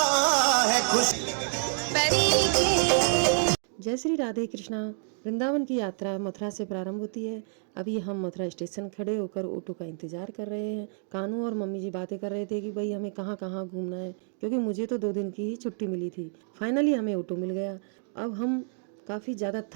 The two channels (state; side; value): silent; left; 58 dB below the other